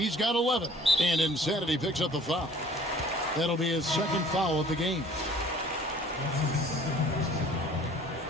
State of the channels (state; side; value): normal; both; correlation 0.51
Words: got 11. And Insanity picks up the foul. That'll be his second foul of the game.